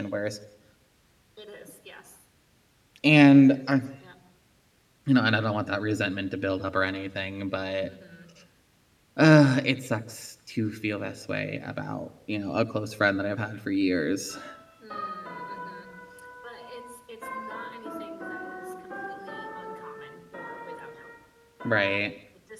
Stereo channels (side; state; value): both; identical; correlation 1.00